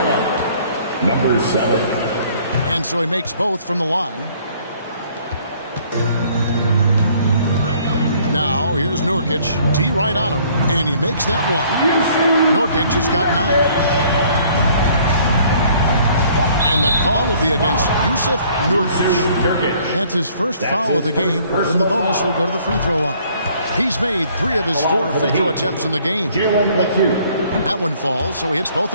number 7. And so he makes both from the line. Now, here's Nurkic. T right on him. And he makes that one. Nurkic has got 9. And the call will be against Jusuf Nurkic. That's his first foul of the game. And the bonus will go to the free throw line. He's made 3 of his 4 free throw attempts in the game. That one falls, so he hits both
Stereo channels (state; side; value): inverted; both; correlation -0.59